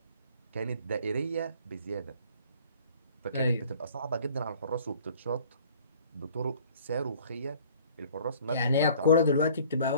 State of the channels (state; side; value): inverted; both; correlation -0.52